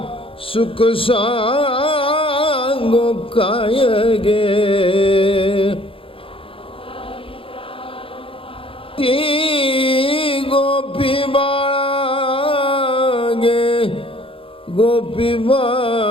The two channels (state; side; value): late; right; 0.26 ms